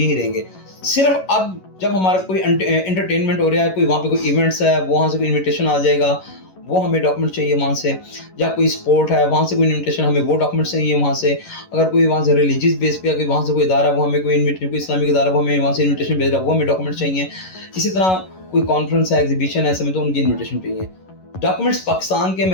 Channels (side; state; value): right; late; 11 ms